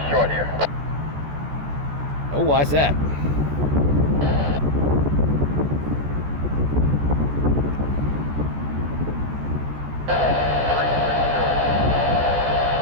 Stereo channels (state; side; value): late; left; 14 ms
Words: short here. Oh, why's that?